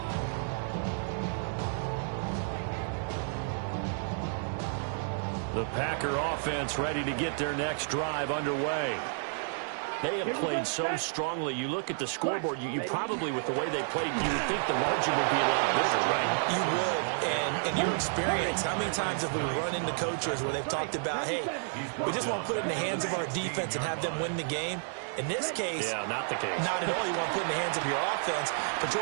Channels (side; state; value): left; silent; 57 dB below the other